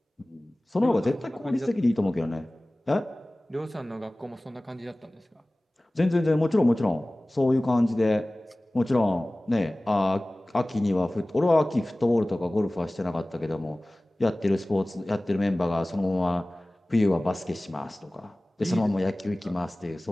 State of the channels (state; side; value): normal; both; correlation 0.98